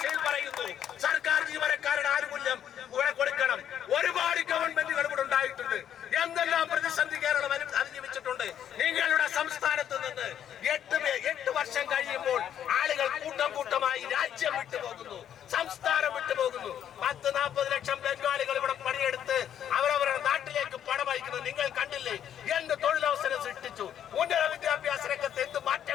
പറയുന്നു. സർക്കാർ ജീവനക്കാരുടെ ആനുകൂല്യം ഇവിടെ കൊടുക്കണം. ഒരുപാട് ഗവൺമെന്റുകൾ ഇവിടെ ഉണ്ടായിട്ടുണ്ട്. എന്തെല്ലാം പ്രതിസന്ധി കേരളം അതിജീവിച്ചിട്ടുണ്ട്. നിങ്ങളുടെ സംസ്ഥാനത്ത് നിന്ന് 8 വർഷം കഴിയുമ്പോൾ ആളുകൾ കൂട്ടമായി രാജ്യം വിട്ടുപോകുന്നു, സംസ്ഥാനം വിട്ടുപോകുന്നു. 10-40 ലക്ഷം ബംഗാളികൾ ഇവിടെ പണിയെടുത്ത് അവരവരുടെ നാട്ടിലേക്ക് പണം അയക്കുന്നത് നിങ്ങൾ കണ്ടില്ലേ? എന്ത് തൊഴിലവസരം സൃഷ്ടിച്ചു. ഉന്നത വിദ്യാഭ്യാസ രംഗത്ത് എന്ത്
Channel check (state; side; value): quieter; right; 9.8 dB